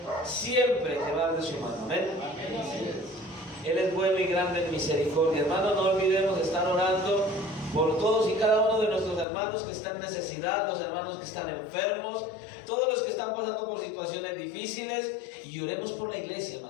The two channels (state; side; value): drops out; right; at 9.2 s